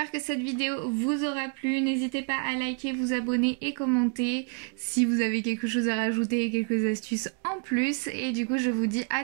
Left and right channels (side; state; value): left; quieter; 38.7 dB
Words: que cette vidéo vous aura plu. N'hésitez pas à liker, vous abonner et commenter si vous avez quelque chose à rajouter et quelques astuces en plus. Et du coup je vous dis à